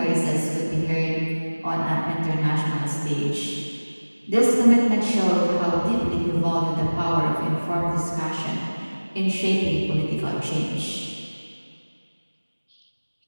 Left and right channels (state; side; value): inverted; both; correlation -1.00